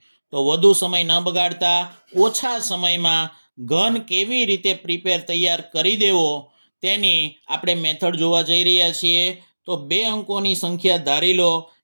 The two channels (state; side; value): inverted; both; correlation -1.00